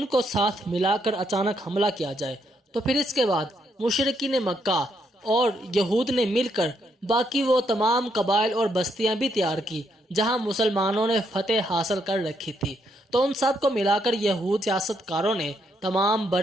کو ساتھ ملا کر اچانک حملہ کیا جائے۔ تو پھر اس کے بعد مشرکین مکہ اور یہود نے مل کر باقی وہ تمام قبائل اور بستیاں بھی تیار کی جہاں مسلمانوں نے فتح حاصل کر رکھی تھی۔ تو ان سب کو ملا کر یہود سیاست کاروں نے تمام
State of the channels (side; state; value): both; normal; correlation 0.76